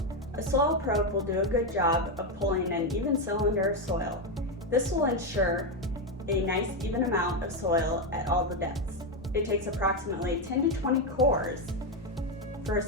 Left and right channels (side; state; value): both; normal; correlation 0.07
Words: A soil probe will do a good job of pulling an even cylinder of soil. This will ensure a nice even amount of soil at all the depths. It takes approximately 10 to 20 cores for a